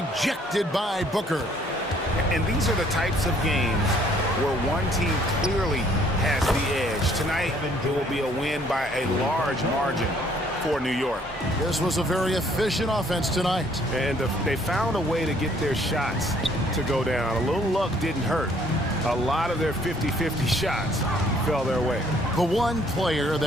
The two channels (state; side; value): normal; both; correlation 0.62